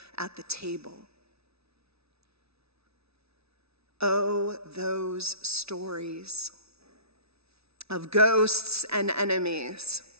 at the table. Oh, those stories of ghosts and enemies.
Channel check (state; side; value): late; left; 0.79 ms